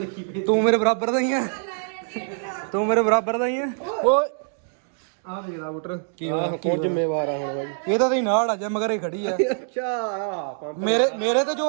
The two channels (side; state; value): left; silent; digital silence